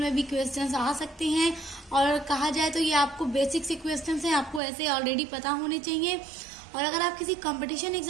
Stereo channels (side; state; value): left; drops out; at 4.6 s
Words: भी क्वेश्चंस आ सकते हैं और कहा जाए तो ये आपको बेसिक से क्वेश्चंस हैं, आपको ऐसे ऑलरेडी पता होने चाहिए। और अगर आप किसी कंपटीशन